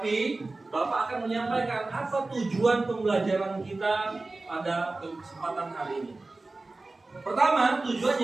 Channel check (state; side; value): quieter; left; 3.3 dB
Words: Bapak akan menyampaikan apa tujuan pembelajaran kita pada kesempatan hari ini. Pertama,